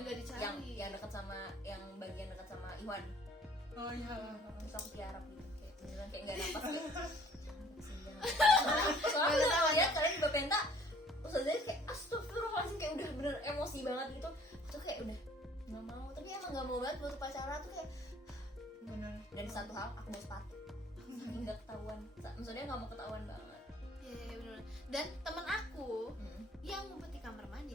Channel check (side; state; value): both; normal; correlation 0.56